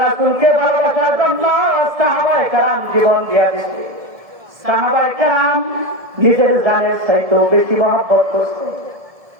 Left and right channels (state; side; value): late; left; 1.7 ms